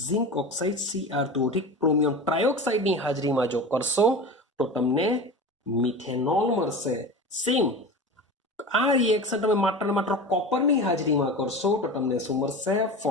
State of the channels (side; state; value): both; normal; correlation 0.30